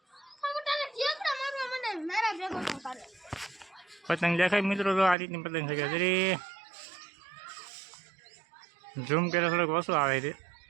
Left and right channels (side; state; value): left; drops out; at 5.2 s